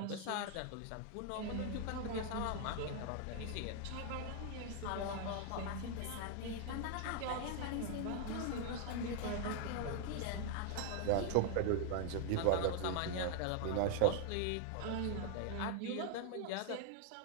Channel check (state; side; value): different; both; correlation 0.00